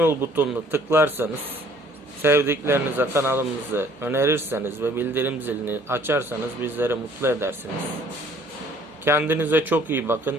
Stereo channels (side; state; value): both; normal; correlation 0.58